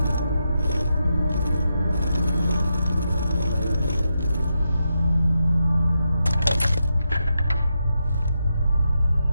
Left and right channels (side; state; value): both; inverted; correlation -0.85